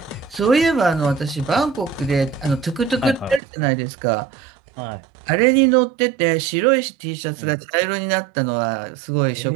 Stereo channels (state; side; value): drops out; left; at 3.4 s